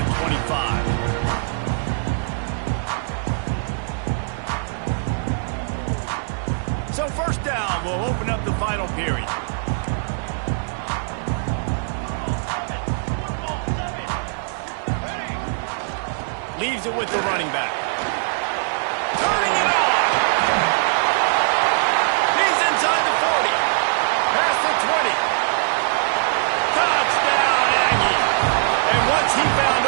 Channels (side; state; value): left; silent; digital silence